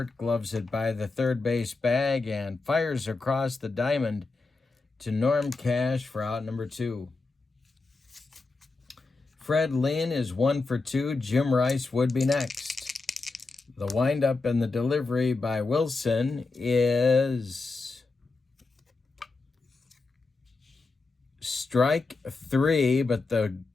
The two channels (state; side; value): quieter; right; 3.7 dB